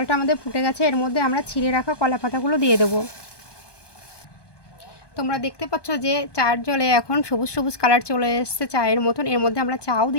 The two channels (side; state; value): right; late; 1.2 ms